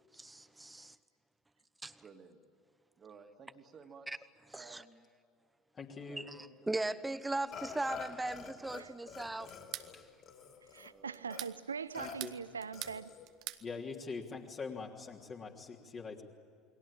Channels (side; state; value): both; normal; correlation 0.62